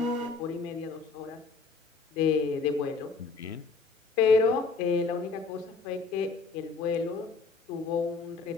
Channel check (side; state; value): right; quieter; 4.5 dB